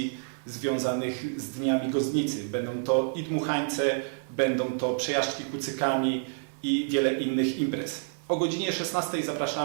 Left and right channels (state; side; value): silent; left; digital silence